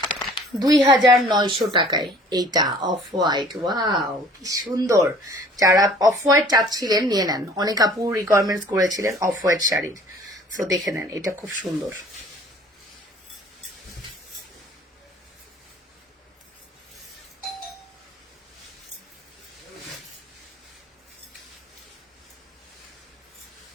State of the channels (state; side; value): normal; both; correlation 0.52